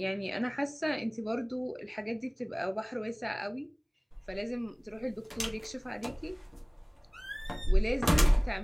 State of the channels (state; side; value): identical; both; correlation 1.00